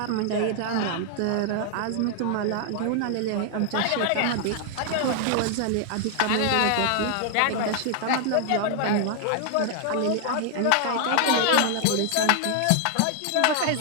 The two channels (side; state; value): both; different; correlation 0.00